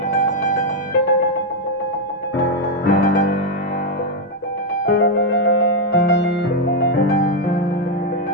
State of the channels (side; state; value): both; normal; correlation 0.02